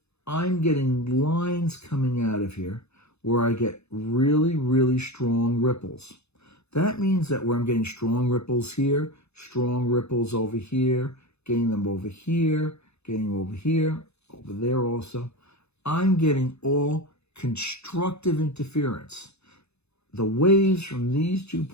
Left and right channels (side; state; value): right; late; 0.80 ms